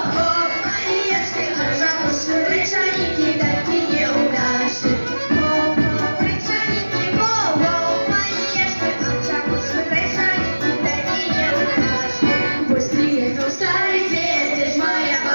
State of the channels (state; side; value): inverted; both; correlation -1.00